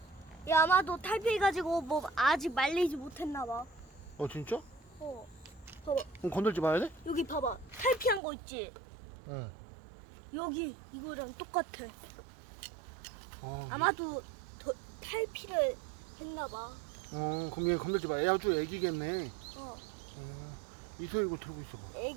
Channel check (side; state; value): left; drops out; at 8.2 s